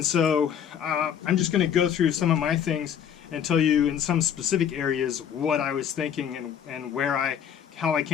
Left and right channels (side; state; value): right; quieter; 8.7 dB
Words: so I'm just going to go through some of my things and tell you in some specific areas what I was thinking and how I